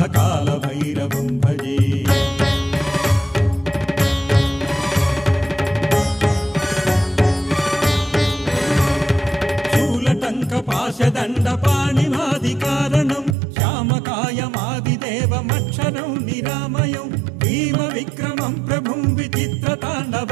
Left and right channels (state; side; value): drops out; left; at 13.4 s